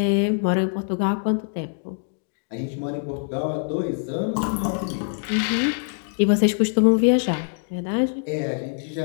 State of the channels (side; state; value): right; silent; digital silence